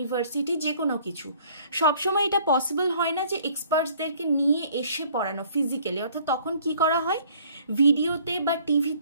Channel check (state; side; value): inverted; both; correlation -0.57